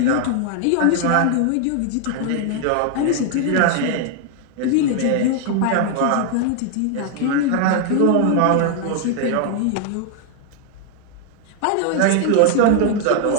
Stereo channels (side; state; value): both; different; correlation 0.00